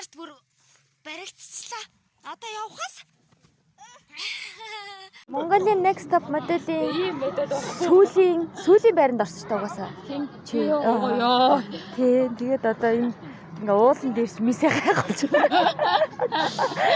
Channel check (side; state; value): both; identical; correlation 1.00